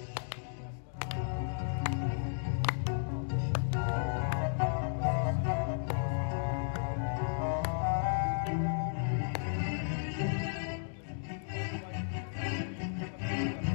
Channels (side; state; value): right; silent; digital silence